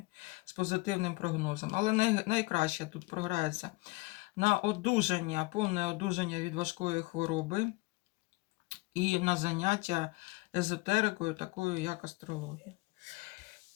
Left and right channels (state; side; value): quieter; right; 23.8 dB